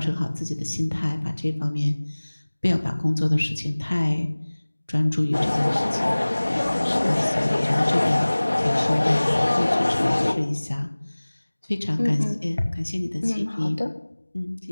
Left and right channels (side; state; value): both; inverted; correlation -1.00